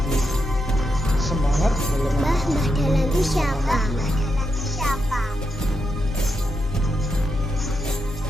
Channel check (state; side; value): normal; both; correlation 0.84